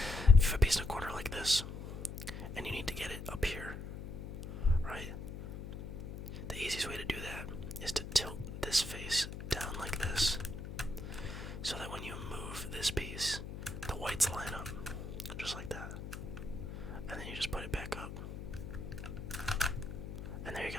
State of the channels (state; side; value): noise; left; hum, 9 dB below the sound